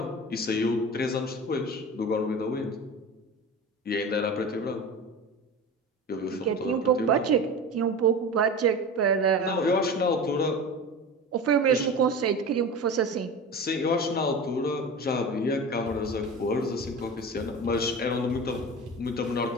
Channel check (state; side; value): normal; both; correlation 0.31